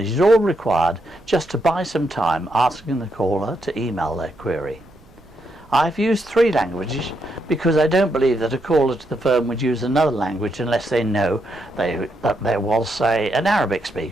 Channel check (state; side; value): noise; right; rumble, 26 dB below the sound